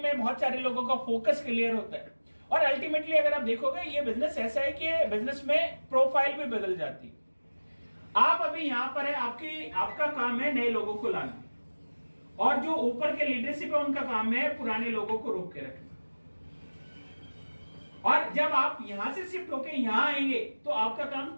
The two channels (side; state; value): both; inverted; correlation -1.00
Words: में बहुत सारे लोगों का फोकस क्लियर होता है, और अल्टीमेटली अगर आप देखोगे ये बिजनेस ऐसा है कि बिजनेस में प्रोफाइल भी बदल जाती है। आप अभी यहां पर है, आपका काम है नए लोगों को लाना, और जो ऊपर के लीडरशिप है उनका काम है पुराने लोगों को रोक के रखना। और जब आप यहां से शिफ्ट होके यहां आएंगे तो आपका काम